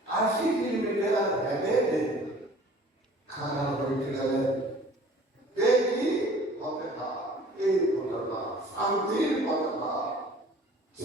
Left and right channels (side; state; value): both; normal; correlation 0.49